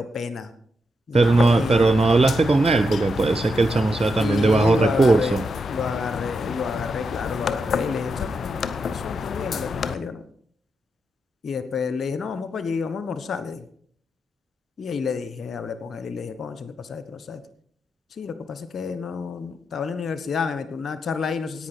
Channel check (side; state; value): both; normal; correlation 0.84